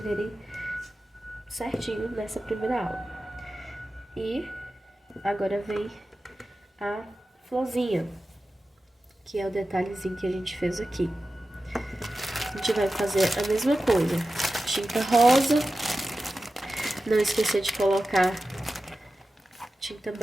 certinho nessa primeira aula. E agora vem a florzinha, que é o detalhezinho que a gente fez aqui. A gente vai fazer a mesma coisa, tinta rosa, não esquecer de colocar tinta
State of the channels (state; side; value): normal; both; correlation 0.94